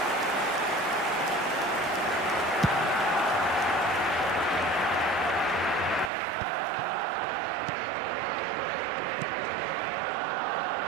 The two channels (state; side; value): drops out; left; at 6.1 s